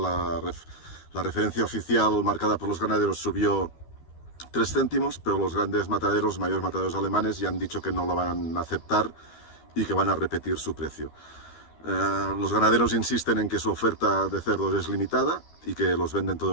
referencia oficial marcada por los ganaderos subió 3 céntimos, pero los grandes mataderos, mayores mataderos alemanes, ya han dicho que no lo van a aceptar y que van a repetir su precio. Los ganaderos insisten en que su oferta de cerdos es limitada y que los venden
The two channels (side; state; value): right; late; 12 ms